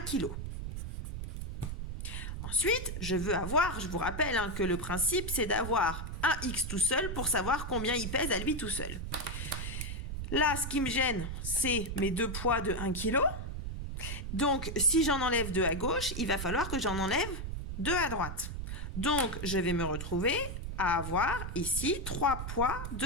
kg. Ensuite, je veux avoir, je vous rappelle hein, que le principe, c'est d'avoir un x tout seul pour savoir combien il pèse à lui tout seul. Là, ce qui me gêne, c'est mes deux poids de 1 kg. Donc, si j'en enlève 2 à gauche, il va falloir que j'en enlève 2 à droite. Donc, je vais me retrouver à avoir ici 3 poids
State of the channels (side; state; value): right; noise; rumble, 5 dB below the sound